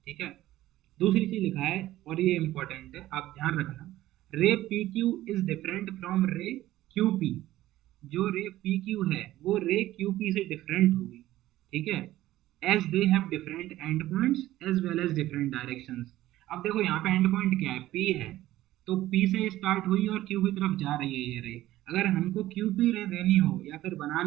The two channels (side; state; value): left; quieter; 15.2 dB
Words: ठीक है। दूसरी चीज लिखा है और ये इंपॉर्टेंट है, आप ध्यान रखना, रे P Q is different from रे क्यू पी। जो रे पी क्यू है वो रे क्यू पी से डिफरेंट होगी, ठीक है, as they have different end points as well as different directions. अब देखो यहाँ पे एंड पॉइंट क्या है, पी है, तो पी से स्टार्ट हुई और क्यू की तरफ जा रही है ये रे। अगर हमको क्यू पी रे देनी हो या फिर